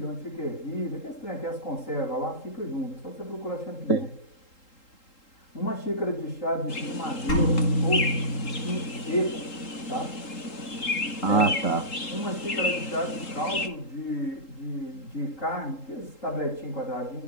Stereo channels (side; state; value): right; late; 3.8 ms